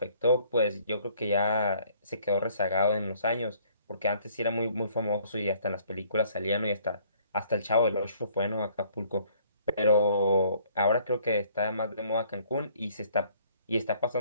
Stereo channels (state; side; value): inverted; both; correlation -0.61